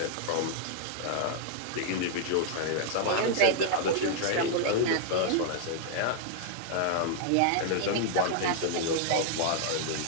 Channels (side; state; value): both; different; correlation -0.01